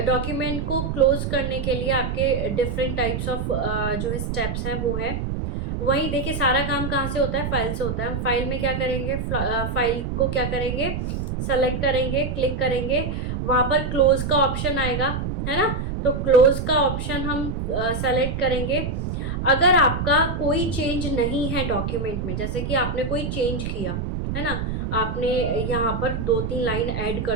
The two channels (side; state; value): right; noise; rumble, 3 dB below the sound